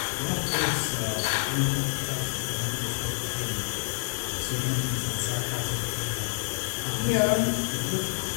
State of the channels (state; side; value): silent; right; digital silence